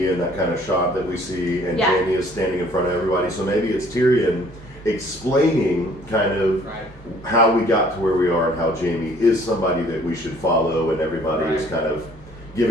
in that kind of shot that we see, and Jaime is standing in front of everybody. So maybe it's Tyrion explaining kind of how we got to where we are and how Jaime is somebody that we should follow, and everybody is kind of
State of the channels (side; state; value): both; normal; correlation 0.57